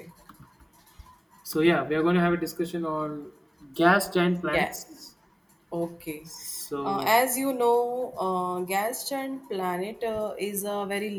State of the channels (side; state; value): both; identical; correlation 1.00